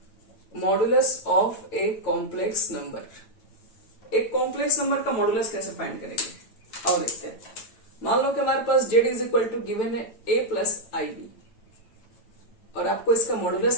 modulus of a complex number, एक कॉम्प्लेक्स नंबर का मॉडुलस कैसे फाइंड करेंगे और देखते हैं। मान लो कि हमारे पास z is equal to given है a प्लस IB और आपको इसका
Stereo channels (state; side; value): late; right; 8.9 ms